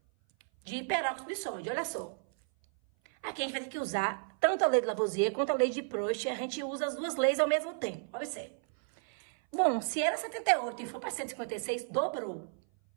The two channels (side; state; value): left; silent; 56 dB below the other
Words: peróxido de sódio. Olha só. Aqui a gente vai ter que usar tanto a lei de Lavoisier quanto a lei de Proust. A gente usa as duas leis ao mesmo tempo. Observe. Bom, se era 78 e for para 156, dobrou.